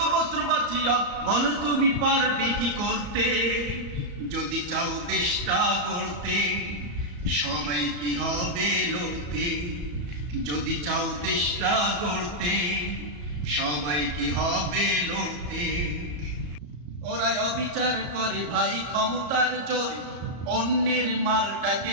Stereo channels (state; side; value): late; left; 34 ms